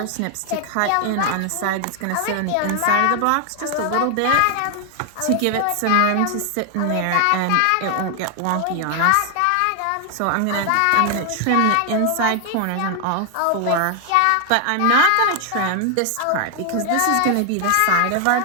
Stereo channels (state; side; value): different; both; correlation 0.00